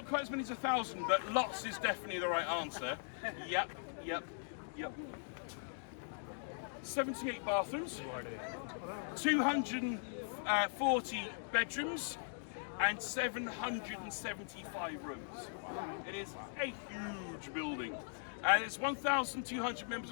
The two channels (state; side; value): silent; right; digital silence